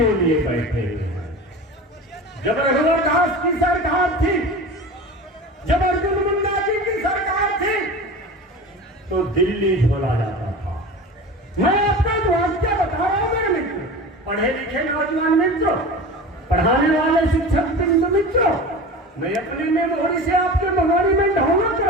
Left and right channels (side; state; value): both; normal; correlation 0.33